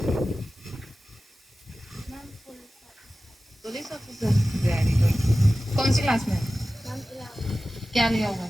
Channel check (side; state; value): both; normal; correlation 0.96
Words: Police officer, very good. कौन सी क्लास में? क्या लिया होगा?